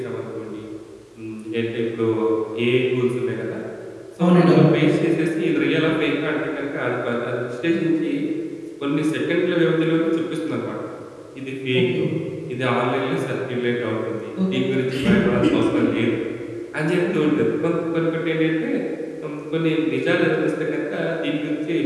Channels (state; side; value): identical; both; correlation 1.00